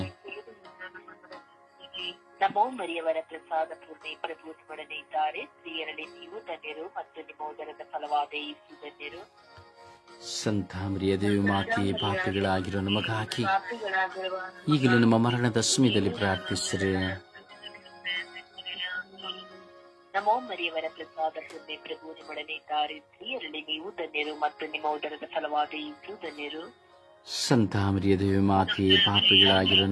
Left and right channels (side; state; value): both; identical; correlation 1.00